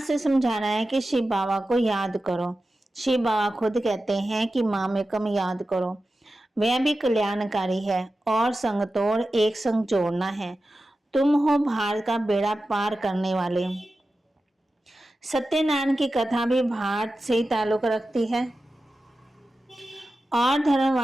समझाना है कि शिव बाबा को याद करो। शिव बाबा खुद कहते हैं कि माँ में कम याद करो, वह भी कल्याणकारी है और संग तोड़ एक संग जोड़ना है। तुम हो भारत का बेड़ा पार करने वाले। सत्यनारायण की कथा भी भारत से ही ताल्लुक रखती है और धर्म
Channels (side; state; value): both; normal; correlation 0.93